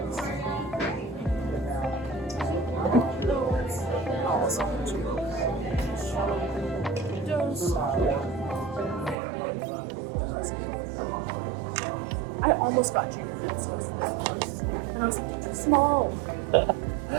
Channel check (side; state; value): left; drops out; at 9.2 s